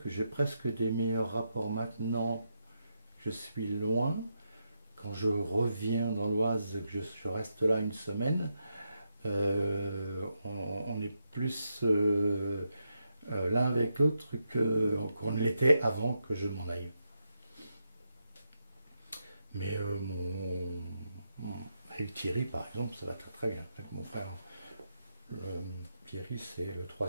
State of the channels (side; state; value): both; inverted; correlation -0.83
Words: que j'ai presque des meilleurs rapports maintenant que je suis loin. Quand je reviens dans l'Oise, que je reste là une semaine, on est plus l'un avec l'autre qu'on ne l'était avant que je m'en aille. Mais avec Thierry, par exemple, ça va très très bien. Avec mon frère, Thierry, c'est le